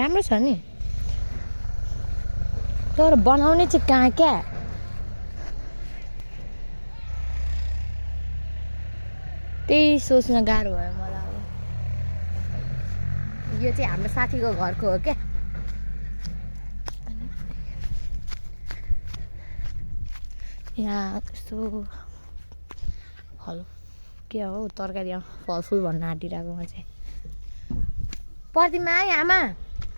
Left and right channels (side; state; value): both; inverted; correlation -1.00